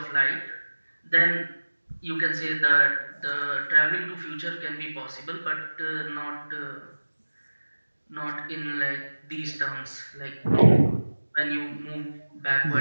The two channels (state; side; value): inverted; both; correlation -1.00